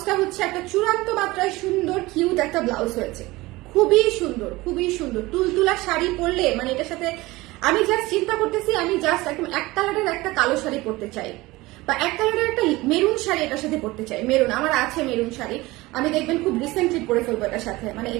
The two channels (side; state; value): left; quieter; 20.3 dB